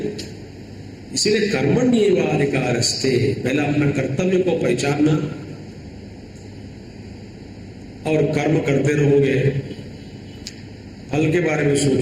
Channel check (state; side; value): identical; both; correlation 1.00